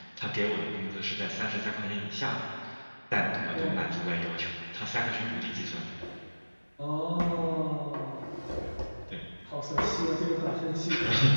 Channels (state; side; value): inverted; both; correlation -1.00